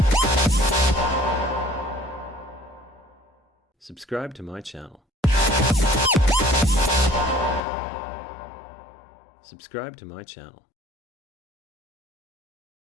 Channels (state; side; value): drops out; right; at 7.6 s